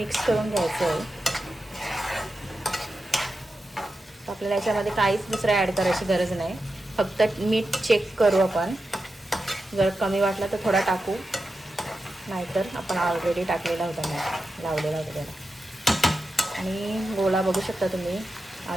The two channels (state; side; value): normal; both; correlation 0.90